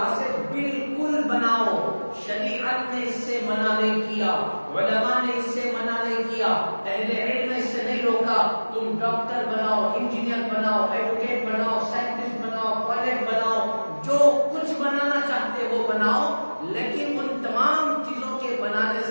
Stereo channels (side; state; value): both; inverted; correlation -1.00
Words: سے بالکل بناؤ۔ شریعت نے اس سے منع نہیں کیا، علماء نے اس سے منع نہیں کیا، اہل علم نے اس سے نہیں روکا۔ تم ڈاکٹر بناؤ، انجینئر بناؤ، ایڈوکیٹ بناؤ، سائنٹسٹ بناؤ، پائلٹ بناؤ، جو کچھ بنانا چاہتے ہو بناؤ، لیکن ان تمام چیزوں کے بنانے